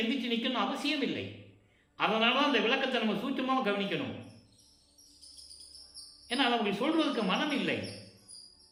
எந்திரிச்சு நிற்கணும் அவசியம் இல்லை. அதனால தான் அந்த விளக்கத்தை நம்ம சூட்சமாக கவனிக்கணும். ஏன்னா அதை அப்படி சொல்றதுக்கு மனம் இல்லை.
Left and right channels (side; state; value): both; identical; correlation 1.00